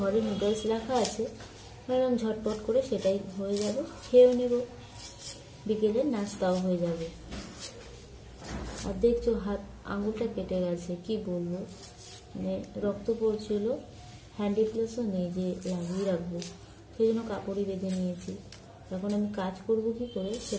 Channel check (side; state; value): both; identical; correlation 1.00